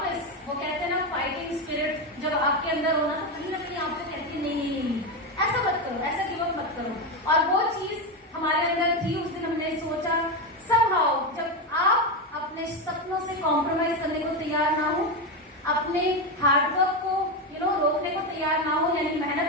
वो कहते हैं ना, फाइटिंग स्पिरिट जब आपके अंदर होना तो कहीं ना कहीं आपको कहती है नहीं, ऐसा मत करो, ऐसा गिव अप मत करो। और वो चीज हमारे अंदर थी। उस दिन हमने सोचा समहाउ, जब आप अपने सपनों से कॉम्प्रोमाइज करने को तैयार ना हो, अपने हार्डवर्क को रोकने को तैयार ना हो, यानी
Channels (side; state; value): both; normal; correlation 0.12